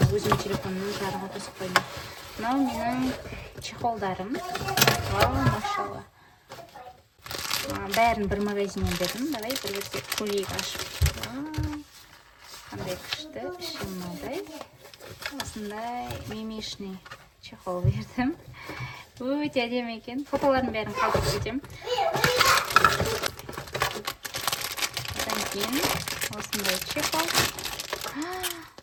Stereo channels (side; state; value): both; identical; correlation 1.00